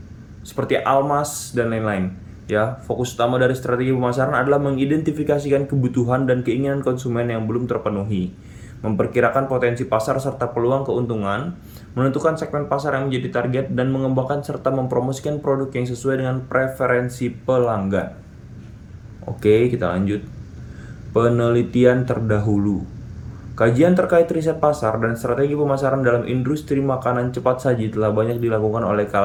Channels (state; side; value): identical; both; correlation 1.00